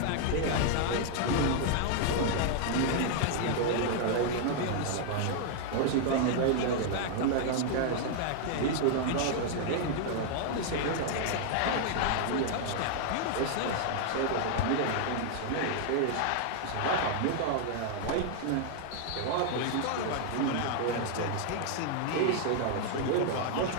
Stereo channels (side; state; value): both; different; correlation 0.00